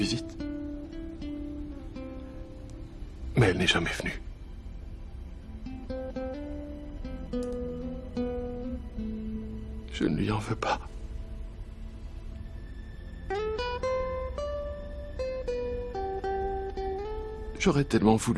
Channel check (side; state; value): both; identical; correlation 1.00